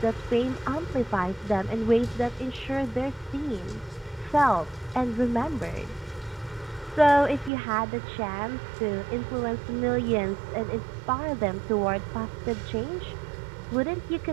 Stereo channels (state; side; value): drops out; left; at 7.5 s